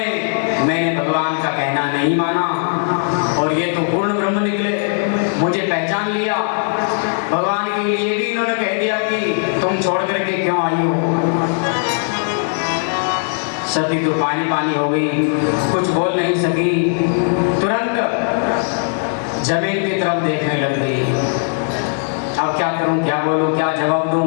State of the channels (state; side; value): silent; right; 64 dB below the other